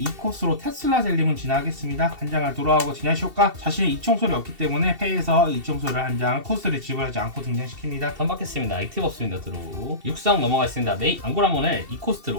2코스로 테슬라 젤리몬 진화하겠습니다. 한 장을 드로우하고 진화 효과 자신의 이청소를 얻기 때문에 패에서 이청소를 한 장 코스트를 지불하지 않고 등장시킵니다. 턴 받겠습니다. 액티브 없습니다. 드로우 육성 넘어가겠습니다. 메이 앙고라몬을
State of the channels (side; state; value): left; late; 2.7 ms